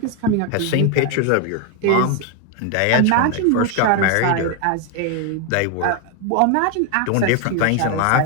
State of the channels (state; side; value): different; both; correlation 0.01